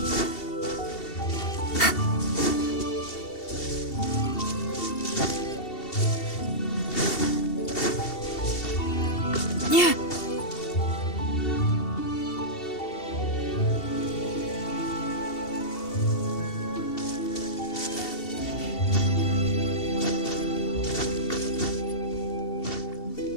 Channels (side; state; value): right; late; 2.7 ms